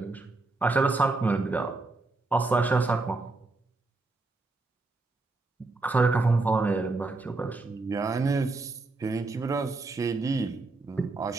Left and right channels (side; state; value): left; quieter; 3.4 dB